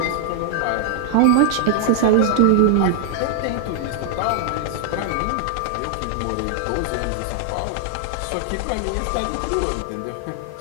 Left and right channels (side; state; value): both; different; correlation 0.00